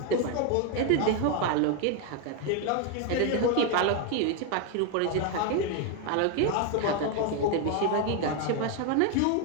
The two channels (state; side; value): different; both; correlation 0.01